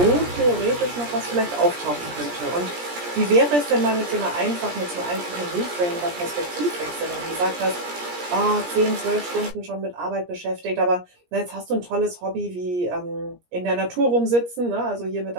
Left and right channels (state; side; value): late; left; 17 ms